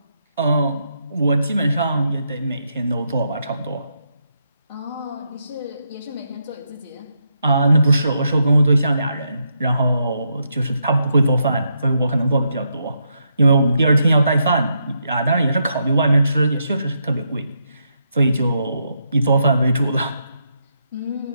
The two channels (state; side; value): inverted; both; correlation -0.80